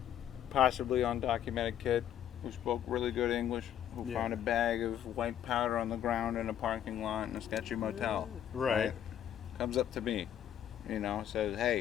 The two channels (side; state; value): right; quieter; 10.3 dB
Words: possibly undocumented kid who spoke really good English, who Yeah. found a bag of white powder on the ground in a parking lot in a sketchy motel. Right. Comes up to me, says,